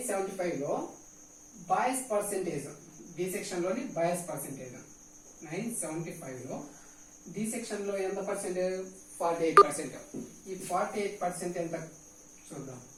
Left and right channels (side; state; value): both; identical; correlation 1.00